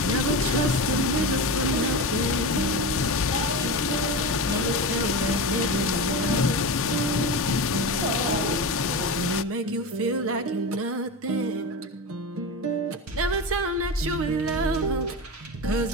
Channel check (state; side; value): normal; both; correlation 0.22